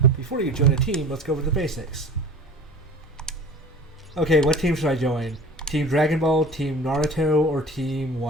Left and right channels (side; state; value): both; normal; correlation 0.40